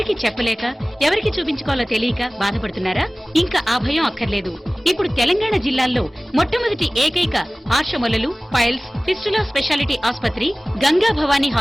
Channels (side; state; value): both; normal; correlation 0.98